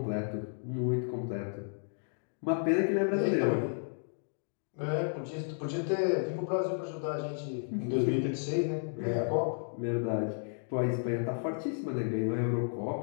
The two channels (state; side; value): silent; right; digital silence